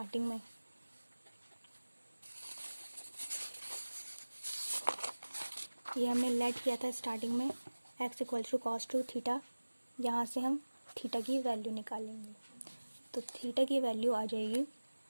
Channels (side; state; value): both; inverted; correlation -1.00